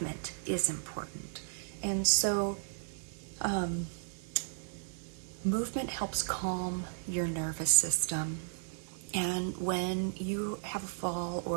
is important. And so movement helps calm your nervous system. And when you have a fall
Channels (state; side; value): silent; left; digital silence